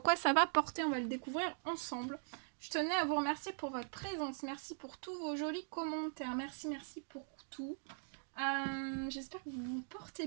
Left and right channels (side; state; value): left; silent; digital silence